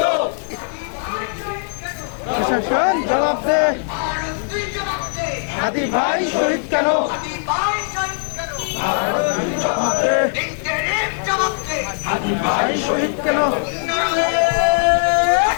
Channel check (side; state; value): right; silent; digital silence